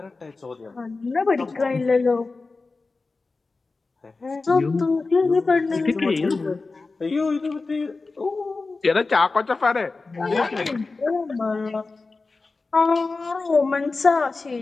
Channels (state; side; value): quieter; right; 3.8 dB